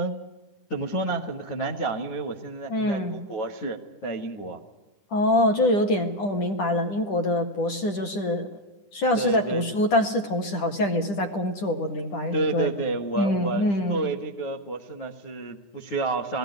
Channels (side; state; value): right; late; 10 ms